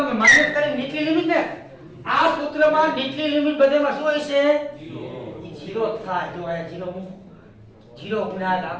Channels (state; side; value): identical; both; correlation 1.00